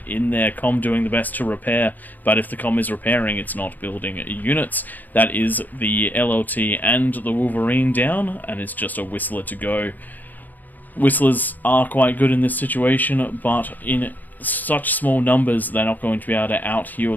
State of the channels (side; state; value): right; late; 0.084 ms